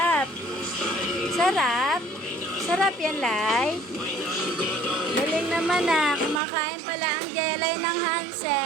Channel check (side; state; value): left; drops out; at 6.4 s